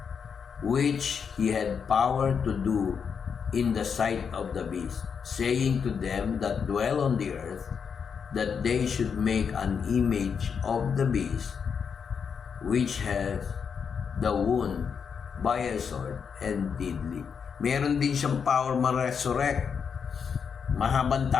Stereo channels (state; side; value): quieter; right; 6.5 dB